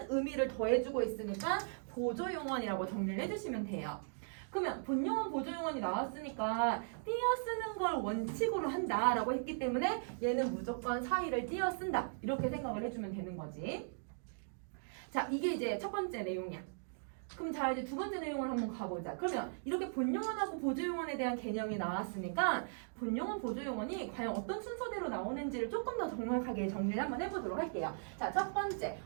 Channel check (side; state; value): left; silent; digital silence